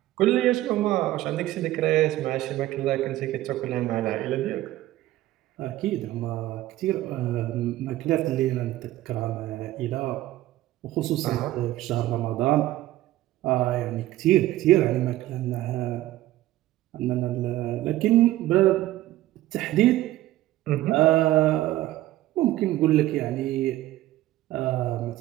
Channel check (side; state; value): left; quieter; 15.4 dB